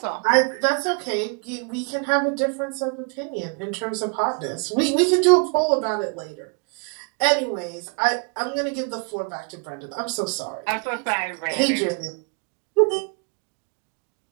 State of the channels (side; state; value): left; quieter; 35.9 dB